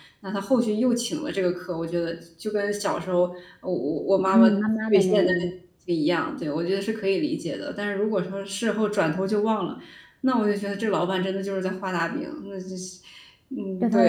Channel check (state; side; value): identical; both; correlation 1.00